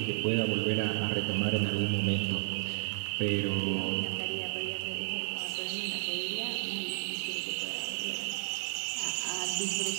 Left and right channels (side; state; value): left; silent; digital silence